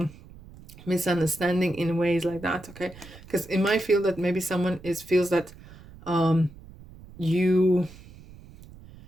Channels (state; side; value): noise; right; rumble, 20 dB below the sound